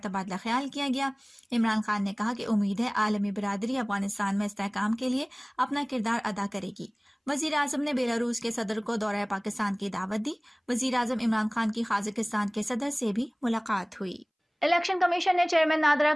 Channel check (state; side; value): identical; both; correlation 1.00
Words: ख्याल किया गया। इमरान खान ने कहा कि उम्मीद है आलमी बिरादरी अफगानिस्तान में इस्तेहकाम के लिए अपना किरदार अदा करेगी। वज़ीर आज़म ने बेलारूस के सदर को दौरा पाकिस्तान की दावत दी। वज़ीर आज़म इमरान खान की काज़ाकिस्तान के सदर से भी मुलाकात हुई। इलेक्शन कमीशन ने चेयरमैन नादरा